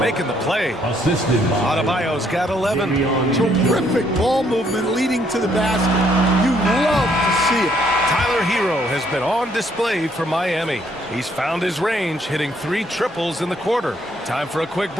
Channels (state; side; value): normal; both; correlation 0.69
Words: the play. Adebayo's got 11. Terrific ball movement leading to the basket. You love to see it. Tyler Hero has been on display for Miami. He's found his range, hitting 3 triples in the quarter. Time for a quick